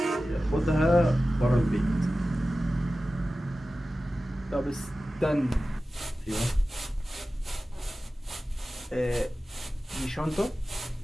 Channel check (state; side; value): normal; both; correlation 0.95